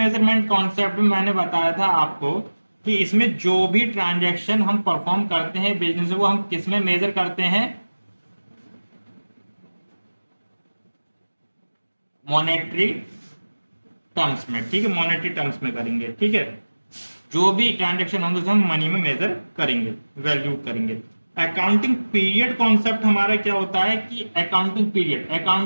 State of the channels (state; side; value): inverted; both; correlation -1.00